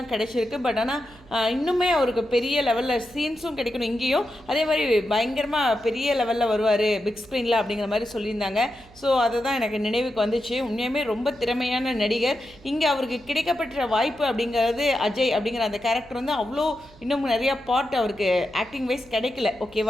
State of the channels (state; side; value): noise; right; hum, 24 dB below the sound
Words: கிடைச்சிருக்கு. பட் ஆனால் இன்னுமே அவருக்கு பெரிய லெவலில் சீன்ஸும் கிடைக்கணும் இங்கேயும். அதே மாதிரி பயங்கரமாக பெரிய லெவலில் வருவார் பிக் ஸ்க்ரீனில் அப்படிங்கிற மாதிரி சொல்லியிருந்தாங்க. ஸோ அதை தான் எனக்கு நினைவுக்கு வந்துச்சு. உண்மையுமே ரொம்ப திறமையான நடிகர். இங்கே அவருக்கு கிடைக்கப்பட்ட வாய்ப்பு அப்படிங்கிறது அஜய் அப்படிங்கிற அந்த கேரக்டர் அவ்வளோ இன்னும் நிறையா பார்ட் அவருக்கு ஆக்டிங் வைஸ் கிடைக்கல.